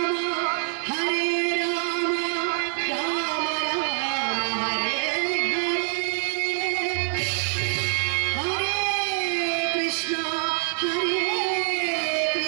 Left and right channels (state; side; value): silent; left; 59 dB below the other